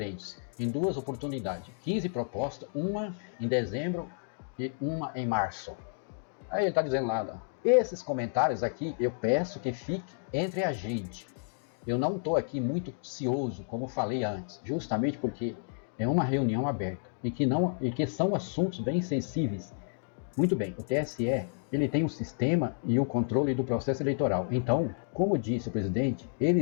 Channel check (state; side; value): silent; right; digital silence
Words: em 2 oportunidades. 15 propostas, uma em dezembro e uma em março. Aí ele está dizendo lá, esses comentários aqui eu peço que fiquem entre a gente. Eu não estou aqui muito ansioso, como falei antes, justamente porque é uma reunião aberta e que são assuntos bem sensíveis. Muito bem, o TSE ele tem um sistema e o controle do processo eleitoral. Então, como disse o presidente,